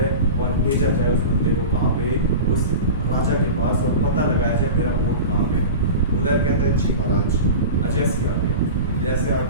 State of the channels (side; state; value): both; inverted; correlation -0.30